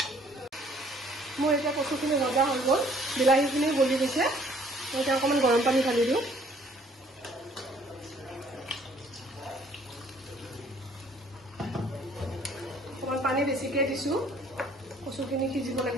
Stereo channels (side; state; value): both; normal; correlation 0.59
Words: মোৰ এতিয়া কচুখিনি ভজা হৈ গ'ল বিলাহীখিনি গলি গৈছে মই এতিয়া অকণমান গৰম পানী ঢালি দিওঁ অকণমান পানী বেছিকৈ দিছোঁ কচুখিনি সিজিব